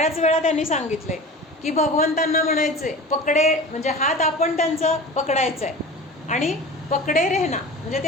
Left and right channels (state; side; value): normal; both; correlation 0.36